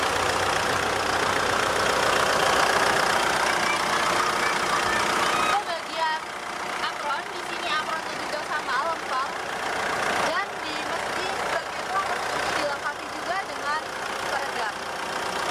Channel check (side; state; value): both; identical; correlation 1.00